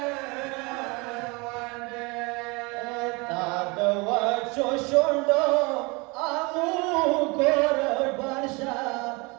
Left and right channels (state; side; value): quieter; left; 27.5 dB